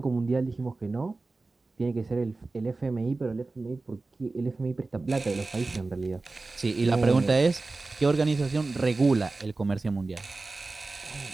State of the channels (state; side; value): quieter; left; 3.5 dB